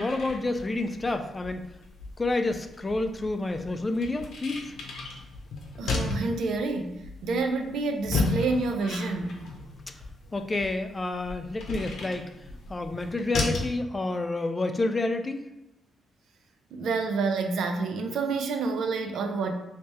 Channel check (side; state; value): both; normal; correlation 0.79